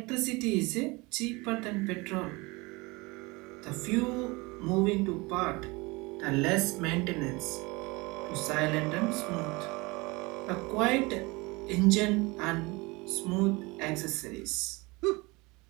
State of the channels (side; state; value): left; quieter; 24.7 dB